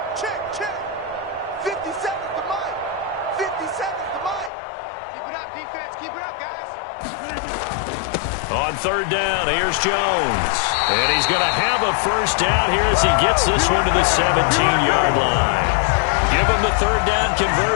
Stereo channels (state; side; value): drops out; right; at 4.5 s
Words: check. 57's the mic. 57's the mic. Keep it up, defense. Keep it up, guys. On 3rd down, here's Jones. And he's going to have a 1st down here as he gets this one to the 17-yard line. Give him the 3rd down